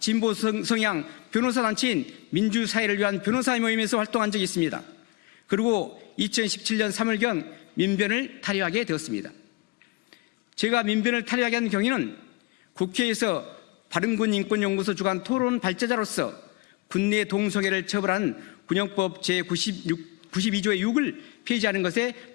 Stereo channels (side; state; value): right; quieter; 24.3 dB